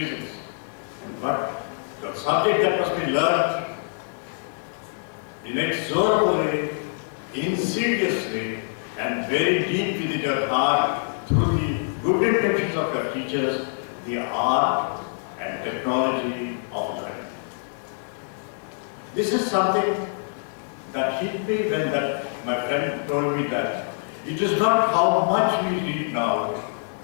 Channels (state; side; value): silent; right; 62 dB below the other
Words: But the subject that must be learned inexorably, insidiously, and very deep within your heart through the good intentions of your teachers, the art and technology of learning. This is something that hit me when my friend told me that it is not how much we read now,